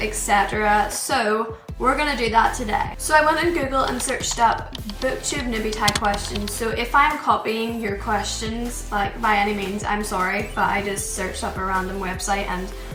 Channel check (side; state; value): both; identical; correlation 1.00